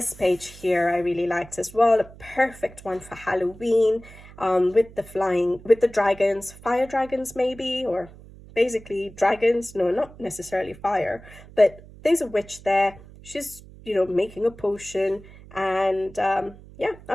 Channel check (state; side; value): noise; right; hum, 20 dB below the sound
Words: page here I really liked as well, a perfect one for Halloween, with the dragons, fire dragons maybe, or basically dragons, no, not necessarily fire, but there's a witch there. She's, making a potion, and yeah,